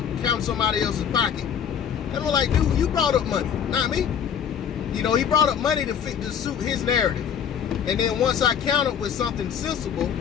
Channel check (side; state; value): right; quieter; 8.1 dB